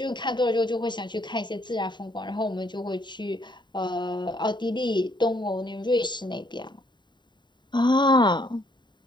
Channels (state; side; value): late; right; 0.22 ms